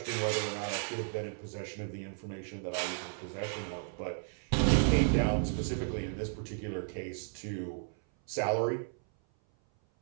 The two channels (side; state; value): left; silent; 55 dB below the other